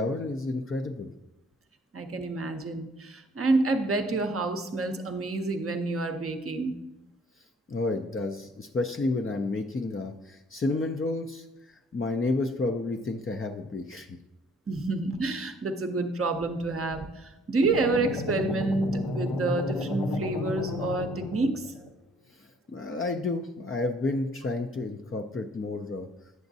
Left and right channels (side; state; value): both; normal; correlation 0.60